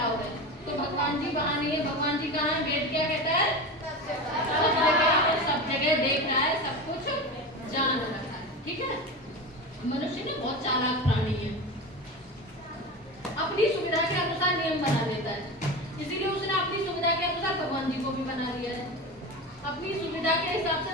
है। तो भगवान जी वहाँ नहीं है, भगवान जी कहाँ है, वेद क्या कहता है, सब जगह देख रहा है, सब कुछ जान रहा है। ठीक है, मनुष्य ने बहुत चालाक प्राणी है, अपनी सुविधा के अनुसार नियम बना देता है, इसीलिए उसने अपनी सुविधा के अनुसार भगवान जी को भी बना दिया है। अपनी सुविधा के हिसाब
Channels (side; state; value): both; normal; correlation 0.25